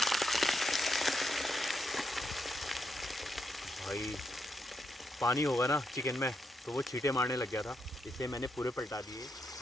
भाई पानी होगा ना चिकन में तो वो छींटे मारने लग गया था, इसलिए मैंने पूरे पलटा दिए।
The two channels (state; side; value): normal; both; correlation 0.81